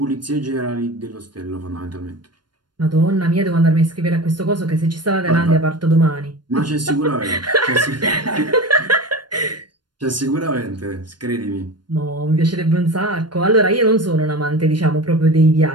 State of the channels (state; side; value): late; left; 0.71 ms